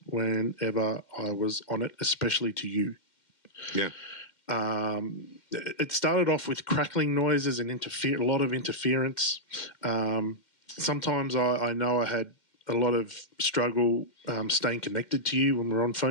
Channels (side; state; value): right; late; 2.1 ms